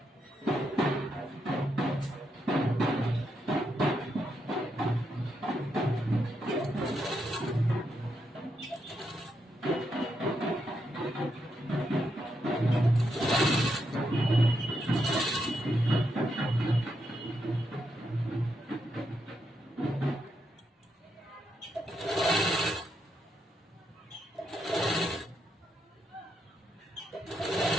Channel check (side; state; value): both; normal; correlation 0.81